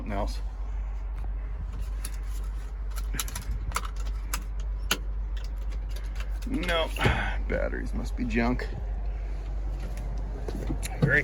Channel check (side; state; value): both; identical; correlation 1.00